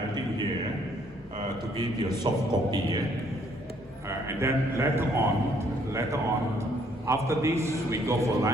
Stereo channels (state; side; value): normal; both; correlation 0.65